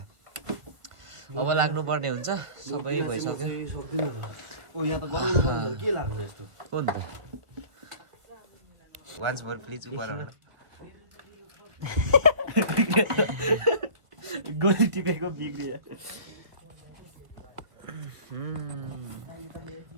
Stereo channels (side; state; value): left; late; 1.7 ms